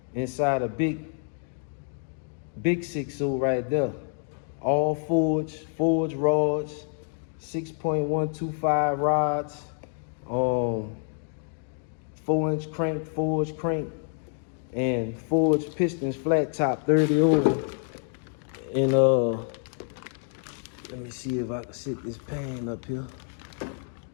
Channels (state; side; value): silent; right; 60 dB below the other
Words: inside a big 6.0 right there. All forged rods, 6.125 rods, 4-inch crank, forged crank, and forged pistons, flat top 30 over. And let me see if I can sit this pan up here.